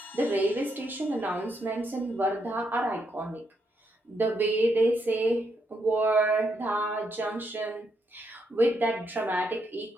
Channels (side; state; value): both; normal; correlation 0.78